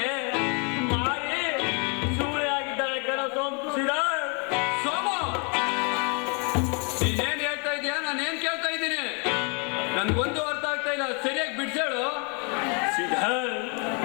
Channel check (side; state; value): right; quieter; 35.7 dB